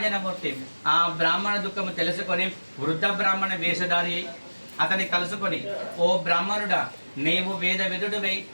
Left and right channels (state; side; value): inverted; both; correlation -1.00